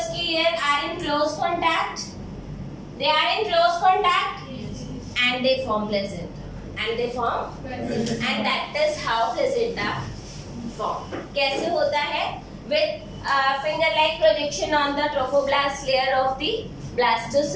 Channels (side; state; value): both; identical; correlation 1.00